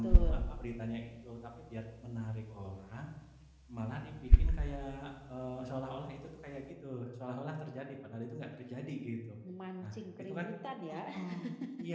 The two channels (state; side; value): identical; both; correlation 1.00